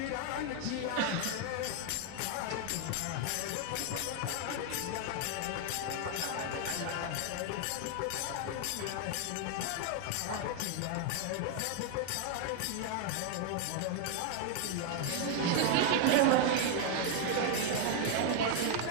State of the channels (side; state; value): both; different; correlation 0.00